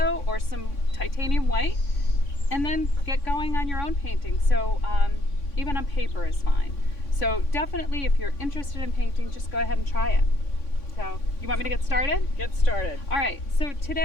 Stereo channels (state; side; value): late; right; 3.6 ms